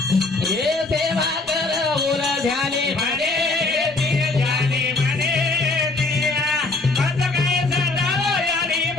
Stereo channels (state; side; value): quieter; right; 3.3 dB